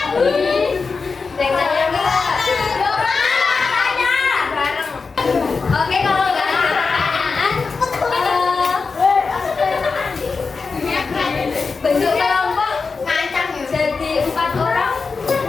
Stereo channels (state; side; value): quieter; right; 4.6 dB